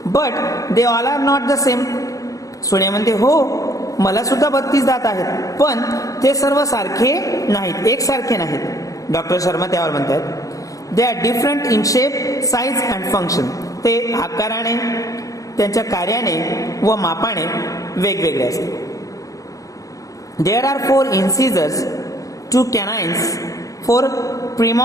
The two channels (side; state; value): right; late; 0.16 ms